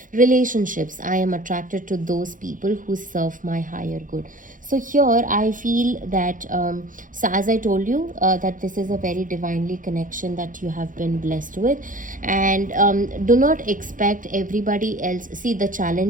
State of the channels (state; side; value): late; left; 0.39 ms